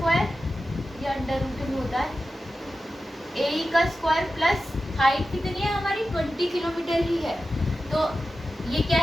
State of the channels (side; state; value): both; normal; correlation 0.93